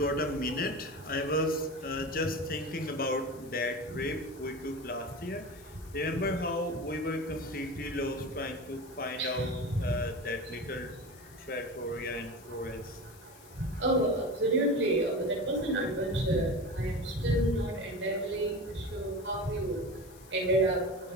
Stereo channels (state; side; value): noise; left; hiss, 22 dB below the sound